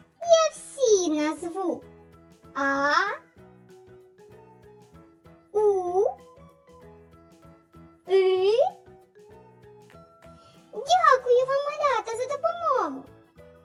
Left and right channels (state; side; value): identical; both; correlation 1.00